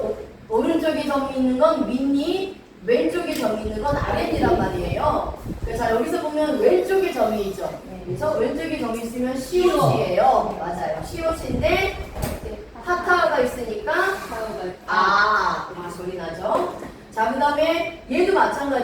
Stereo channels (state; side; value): identical; both; correlation 1.00